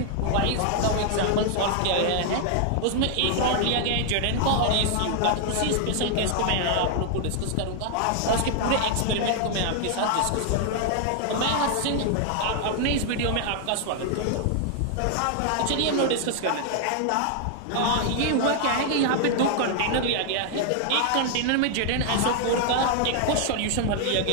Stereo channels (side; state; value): both; different; correlation 0.00